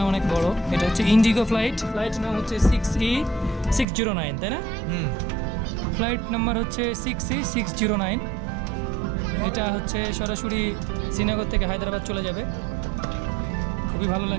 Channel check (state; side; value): drops out; left; at 3.9 s